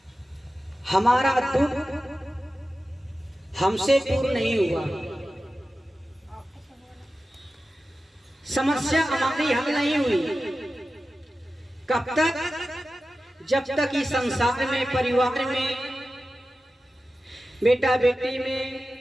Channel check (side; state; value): both; normal; correlation 0.94